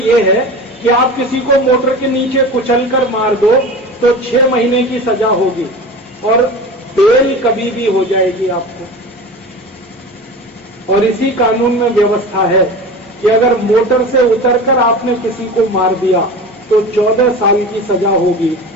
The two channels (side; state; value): both; normal; correlation 0.33